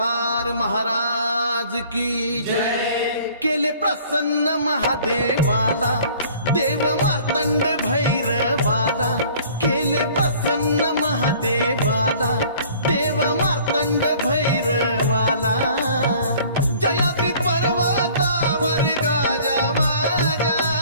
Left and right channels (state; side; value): inverted; both; correlation -0.52